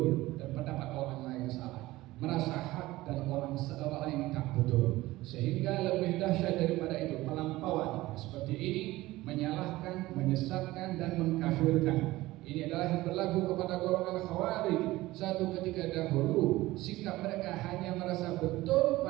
dan pendapat orang lain salah, merasa hak dan orang lain tak betul. Sehingga lebih dahsyat daripada itu, pelampauan seperti ini menyalahkan, menyesatkan, dan mengkafirkan. Ini adalah yang berlaku kepada golongan Khawarij. Satu ketika dahulu, sikap mereka hanya merasa betul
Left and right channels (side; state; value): left; quieter; 18.0 dB